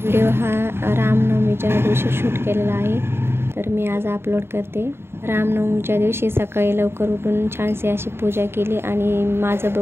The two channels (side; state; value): left; late; 0.11 ms